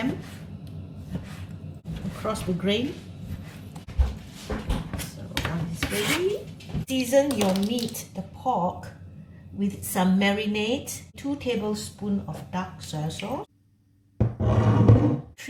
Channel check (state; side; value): identical; both; correlation 1.00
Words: across the grain. So one is ready. Season your meat, the pork, with some marinade. 2 tablespoons of dark soy sauce.